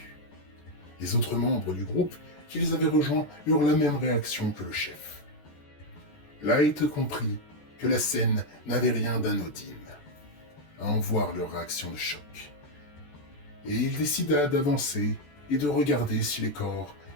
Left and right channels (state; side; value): late; right; 14 ms